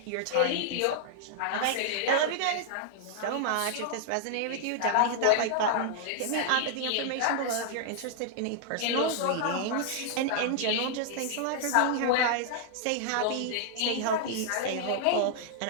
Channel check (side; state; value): both; different; correlation -0.01